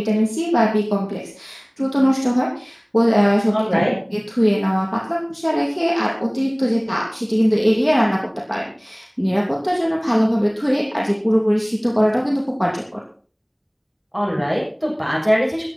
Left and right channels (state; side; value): identical; both; correlation 1.00